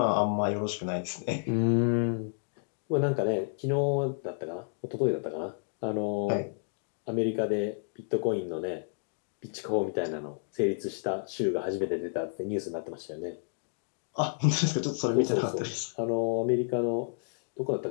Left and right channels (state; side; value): silent; right; digital silence